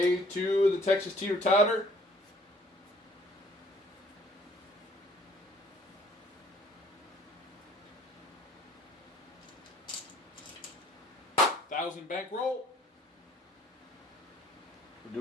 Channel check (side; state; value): both; normal; correlation 0.57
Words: 2 of the Texas Teeter Totter. $1,000 bankroll. We're